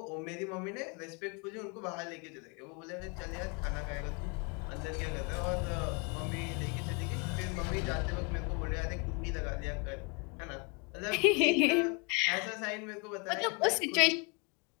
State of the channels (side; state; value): right; quieter; 31.1 dB